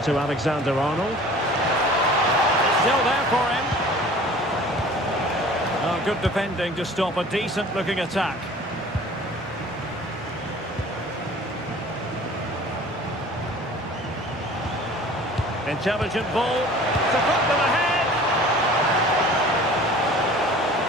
to Alexander-Arnold. Still there for him. Oh, good defending to stop a decent-looking attack. Intelligent ball to put them ahead.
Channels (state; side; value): normal; both; correlation 0.46